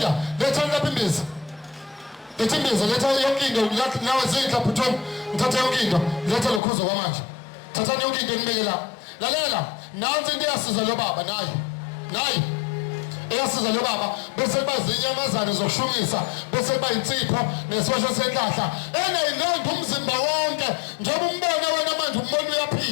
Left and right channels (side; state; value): right; drops out; at 6.6 s